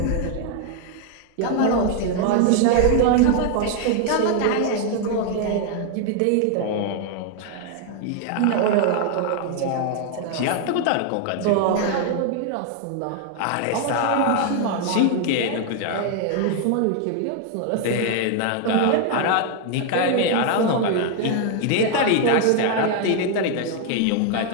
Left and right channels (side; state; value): both; different; correlation 0.00